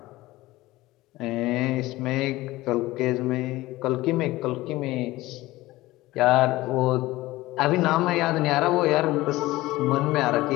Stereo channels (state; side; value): quieter; right; 18.4 dB